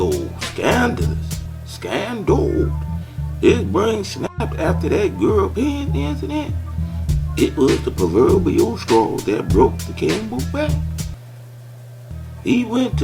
scandal. His brain snapped after that girl pants incident. It was the proverbial straw that broke the camel's back. He went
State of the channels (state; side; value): identical; both; correlation 1.00